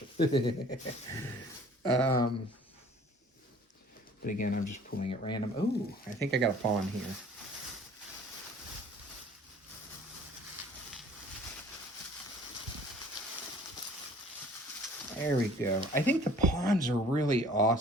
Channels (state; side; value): normal; both; correlation 0.51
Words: But again, I'm just pulling at random. Oh, I think I got a pawn here. There we go. I think the pawns are really